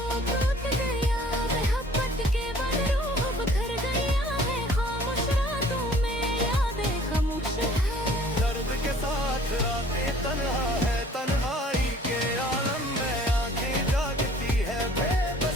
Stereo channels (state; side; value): normal; both; correlation 0.53